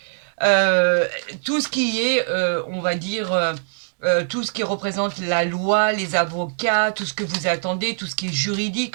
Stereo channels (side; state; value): left; silent; digital silence